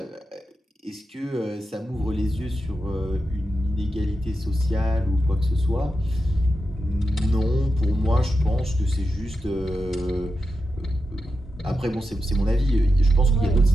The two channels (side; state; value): both; normal; correlation 0.89